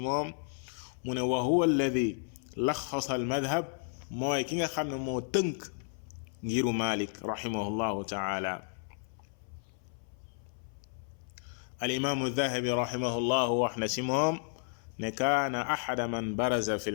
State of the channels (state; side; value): silent; right; 56 dB below the other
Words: mu ne wa huwa alladi laxasa al madhab mooy ki nga xam ne moo tënk ngiru Malik rahimahullahu taala al imaamu Dahabi rahimahullahu wax na si moom ne kaana axada man baraza fi